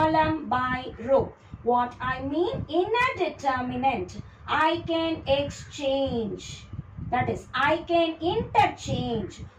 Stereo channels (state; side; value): identical; both; correlation 1.00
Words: by row. What I mean, in a determinant, I can exchange. That is, I can interchange